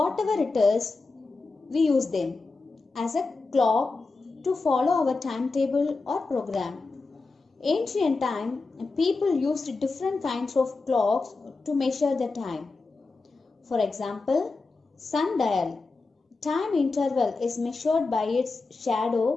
it is, we use them as a clock to follow our timetable or program. Ancient time, people used different kinds of clocks to measure the time. For example, sundial. Time interval is measured by its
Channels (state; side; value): quieter; right; 3.8 dB